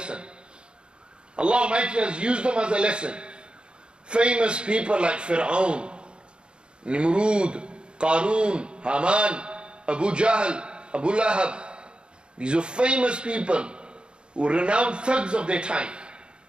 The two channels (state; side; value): late; left; 0.053 ms